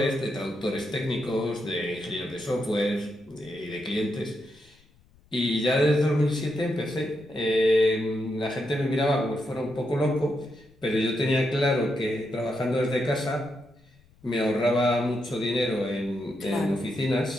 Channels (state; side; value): noise; left; rumble, 30 dB below the sound